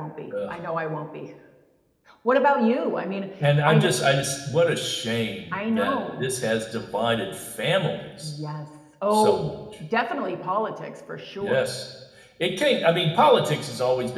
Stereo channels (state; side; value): identical; both; correlation 1.00